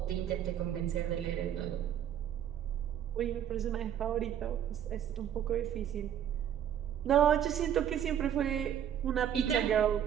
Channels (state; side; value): quieter; left; 9.8 dB